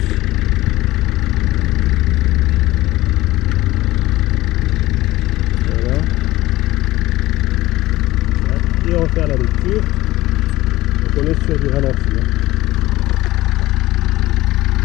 Voilà. Et on va faire la lecture. Donc on est sur du ralenti.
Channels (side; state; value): right; quieter; 17.5 dB